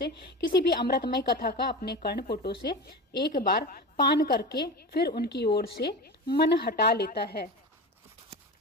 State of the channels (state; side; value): normal; both; correlation 0.27